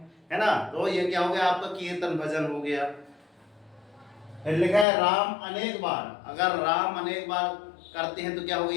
है ना, तो ये क्या हो गया, आपका कीर्तन भजन हो गया। फिर लिखा है राम अनेक बार, अगर राम अनेक बार करते हैं तो क्या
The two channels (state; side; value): drops out; right; at 4.9 s